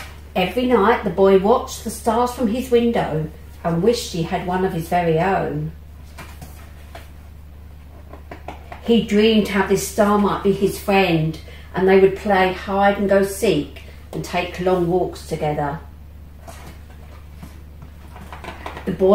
Every night the boy watched the stars from his window and wished he had one of his very own. He dreamed how this star might be his friend, and they would play hide and go seek and take long walks together. The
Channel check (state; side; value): identical; both; correlation 1.00